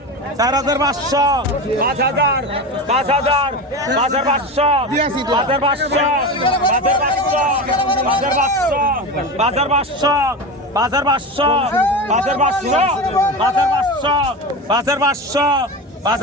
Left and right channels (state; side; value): normal; both; correlation 0.24